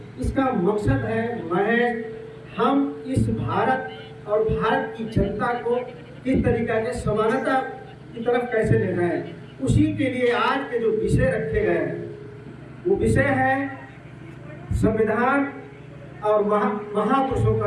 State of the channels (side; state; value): both; identical; correlation 1.00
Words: इसका मकसद है महज हम इस भारत और भारत की जनता को किस तरीके से समानता की तरफ कैसे ले जाए, उसी के लिए आज के जो विषय रखे गए हैं वो विषय है संविधान और महापुरुषों